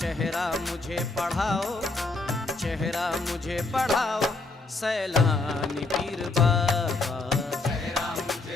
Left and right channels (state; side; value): quieter; right; 3.4 dB